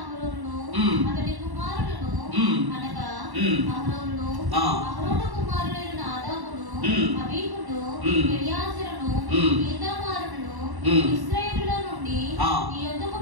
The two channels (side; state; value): left; late; 1.1 ms